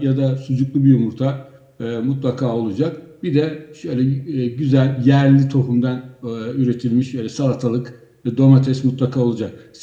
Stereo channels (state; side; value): identical; both; correlation 1.00